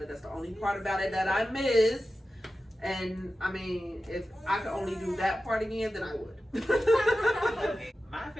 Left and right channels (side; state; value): both; normal; correlation 0.93